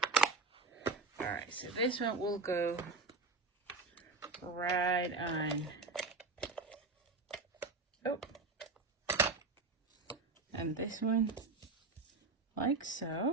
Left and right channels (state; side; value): quieter; left; 3.8 dB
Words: Alright, so this one will go right on. Oh, and this one like